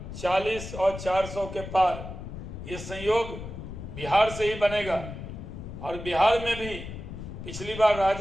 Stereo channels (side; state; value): left; noise; rumble, 9 dB below the sound